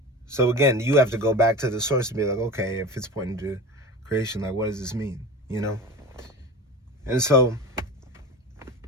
So again, you have to go back to the source and be like, okay, if it's pointing to creation, like, what does this mean? And so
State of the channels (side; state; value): both; normal; correlation 0.31